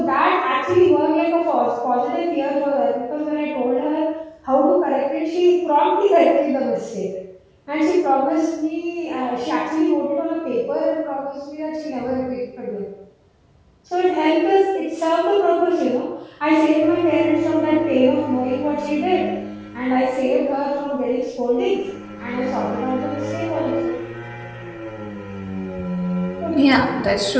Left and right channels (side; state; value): both; identical; correlation 1.00